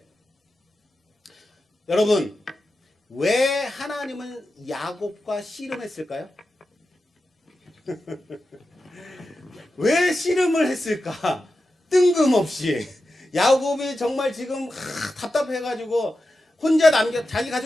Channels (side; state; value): both; normal; correlation 0.91